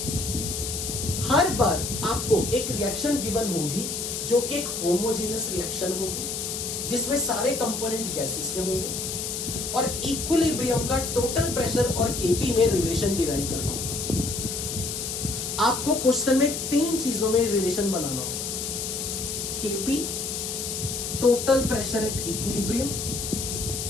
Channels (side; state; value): left; noise; hiss, 4 dB below the sound